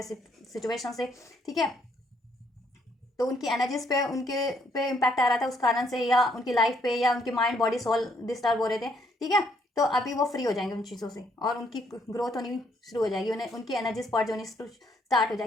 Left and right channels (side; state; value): both; normal; correlation 0.70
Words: सिचुएशन से, ठीक है। तो उनकी एनर्जीज पे उनके पे इम्पैक्ट आ रहा था उस कारण से, या उनकी लाइफ पे, या उनकी माइंड बॉडी सोल डिस्टर्ब हो रहे थे, ठीक है। तो अभी वो फ्री हो जाएंगे उन चीज़ों से, और उनकी ग्रोथ होनी शुरू हो जाएगी, उन्हें उनकी एनर्जीज पर्ज होनी स्टार्ट हो